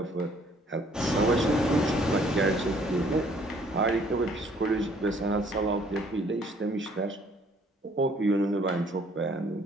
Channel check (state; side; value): normal; both; correlation 0.60